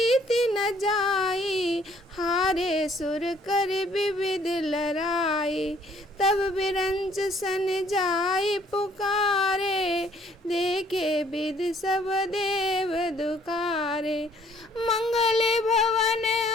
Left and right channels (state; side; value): normal; both; correlation 0.61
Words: न जाई, हारे सुर कर विविध लड़ाई। तब बिरंच सन जाई पुकारे, देखे विध सब देव दुखारे। मंगल भवन